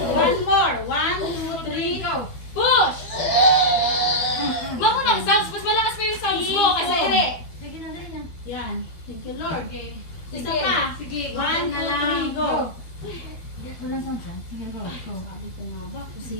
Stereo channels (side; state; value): right; late; 12 ms